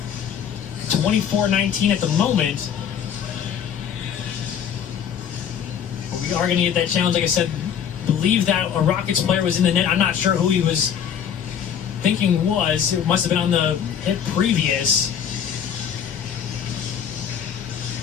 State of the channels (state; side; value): quieter; right; 8.3 dB